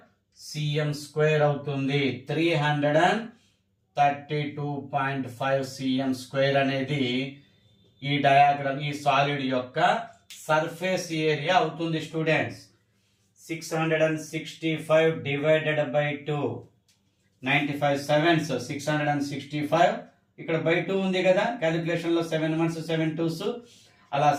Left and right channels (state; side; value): identical; both; correlation 1.00